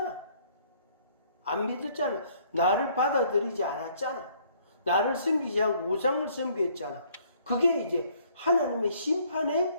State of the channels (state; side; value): inverted; both; correlation -0.62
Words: 나를 받아들이지 않았잖아. 나를 섬기지 않고 우상을 섬겼잖아. 그게 이제 하나님의